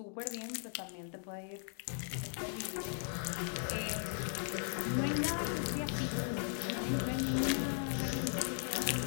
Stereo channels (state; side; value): silent; right; 53 dB below the other